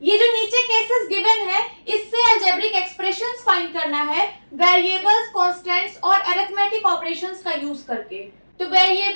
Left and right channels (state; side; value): inverted; both; correlation -1.00